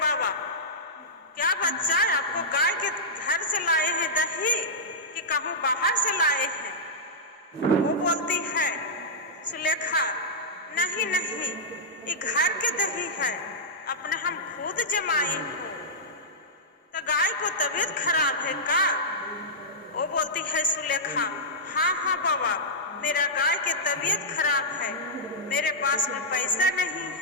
बाबा क्या बच्चा आपको गाय के घर से लाए हैं दही कि कहूँ बाहर से लाए हैं? वो बोलती है सुलेखा नहीं नहीं ये घर के दही है, अपने हम खुद जमाए हो। तो गाय को तबीयत खराब है का? वो बोलती है सुलेखा हाँ हाँ बाबा मेरा गाय की तबीयत खराब है, मेरे पास में पैसा नहीं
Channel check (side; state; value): both; normal; correlation -0.11